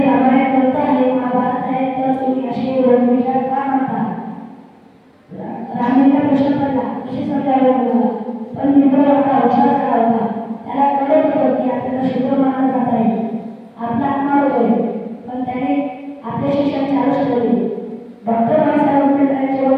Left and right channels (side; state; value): both; identical; correlation 1.00